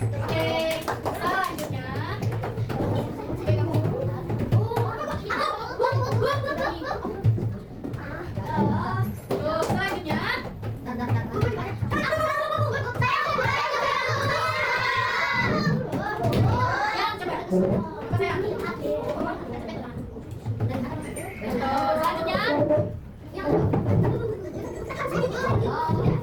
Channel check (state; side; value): identical; both; correlation 1.00